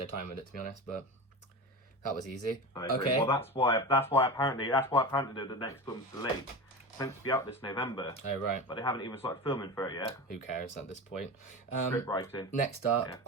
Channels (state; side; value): normal; both; correlation 0.26